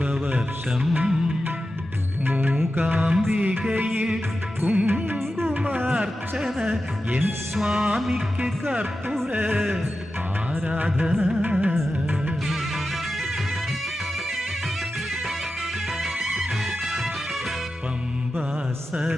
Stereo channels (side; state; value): both; normal; correlation 0.92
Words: മൂകാംബികയിൽ കുങ്കുമാർച്ചന, എൻ സ്വാമിക്ക് കർപ്പൂര ആരാധന.